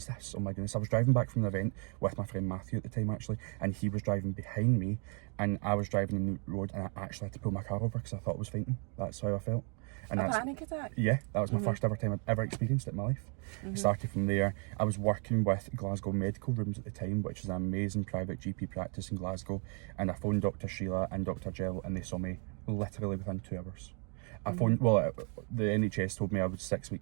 this? Oh my goodness. I was driving back from an event with my friend Matthew at the time, actually, and he was driving behind me, and I was driving in the road, and I actually had to pull my car over because I thought I was fainting. That's how I felt. And a panic attack? Yeah, that was my first ever time I'd ever experienced it in my life. It started from there. I was working with Glasgow Medical Rooms at the time, which is an amazing private GP practice in Glasgow, and I phoned Dr. Sheila and Dr. Jill, and they saw me literally within 2 hours. I phoned, the NHS told me I was 6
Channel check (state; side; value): quieter; left; 37.9 dB